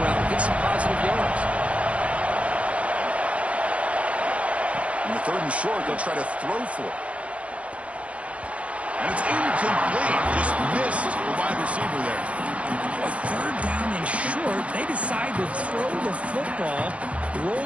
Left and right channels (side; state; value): left; late; 0.063 ms